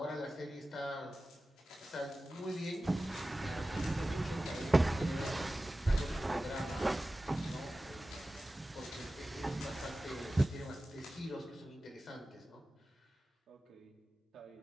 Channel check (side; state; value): both; normal; correlation 0.96